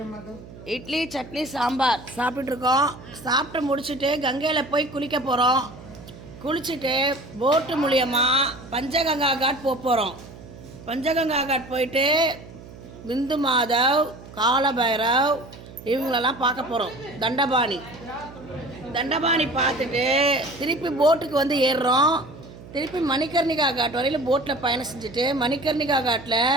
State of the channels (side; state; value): right; noise; hum, 17 dB below the sound